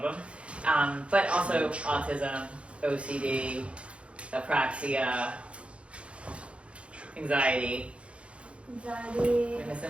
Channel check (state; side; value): late; left; 0.060 ms